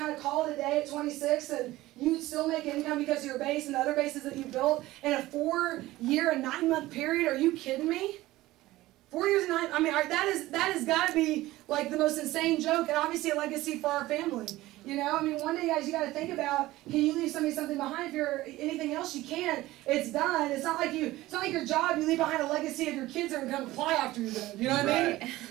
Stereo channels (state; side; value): quieter; left; 17.3 dB